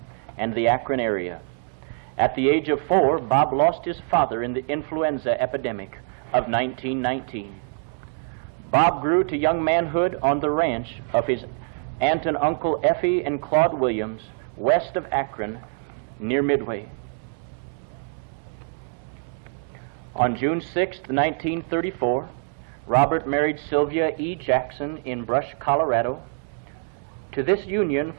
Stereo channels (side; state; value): left; silent; 59 dB below the other